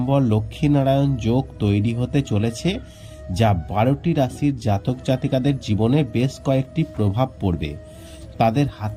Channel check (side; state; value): both; identical; correlation 1.00